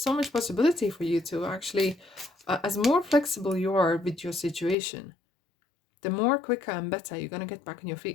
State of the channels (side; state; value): right; drops out; at 4.8 s